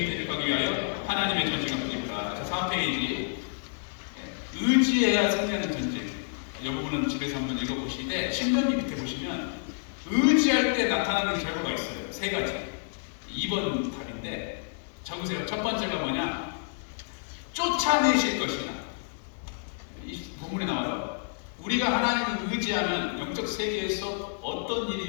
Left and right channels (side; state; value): right; silent; 59 dB below the other